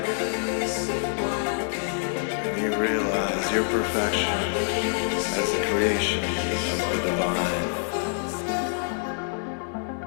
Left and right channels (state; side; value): silent; right; 58 dB below the other